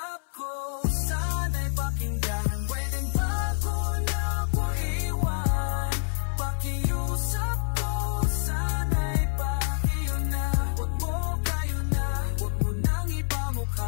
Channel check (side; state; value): right; silent; 60 dB below the other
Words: ko, sana'y pakinggan. Pwedeng bago na ko iwan, pakiusap ko, sana'y pakiyo na. Huwag mo kayo na, huwag mo nang